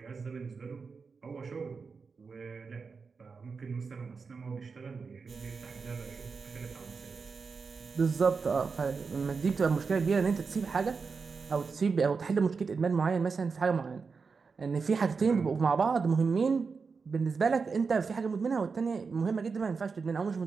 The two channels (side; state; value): left; quieter; 5.0 dB